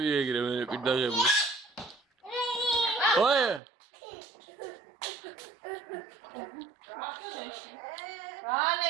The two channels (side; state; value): left; drops out; at 3.6 s